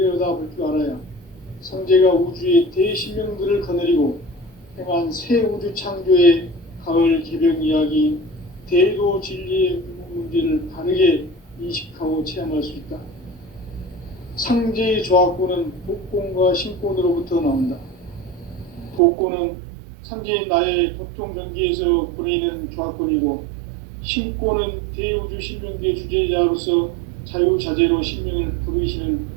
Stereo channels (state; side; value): drops out; left; at 19.0 s